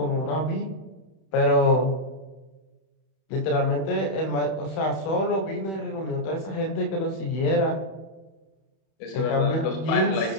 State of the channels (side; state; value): right; late; 31 ms